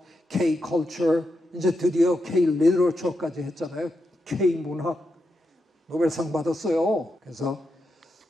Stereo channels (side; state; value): both; normal; correlation 0.86